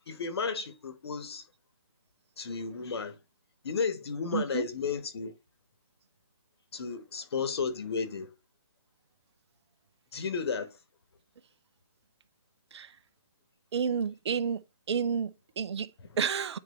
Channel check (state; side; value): inverted; both; correlation -0.43